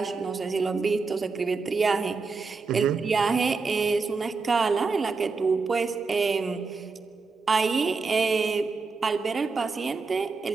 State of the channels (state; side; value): quieter; left; 4.4 dB